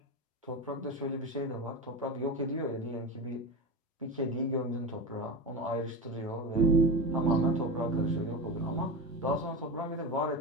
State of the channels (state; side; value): normal; both; correlation 0.21